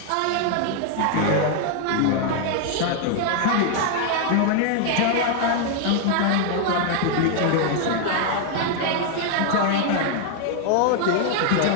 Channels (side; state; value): both; different; correlation 0.00